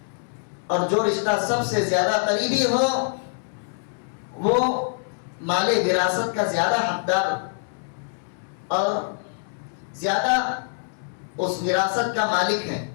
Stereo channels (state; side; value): silent; right; digital silence